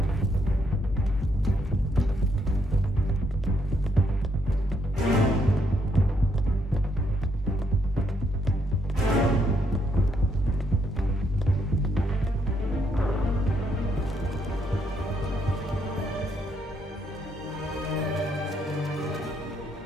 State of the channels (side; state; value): both; normal; correlation 0.74